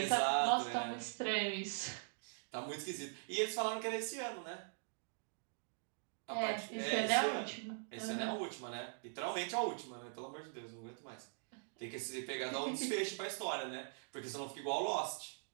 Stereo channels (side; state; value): left; silent; digital silence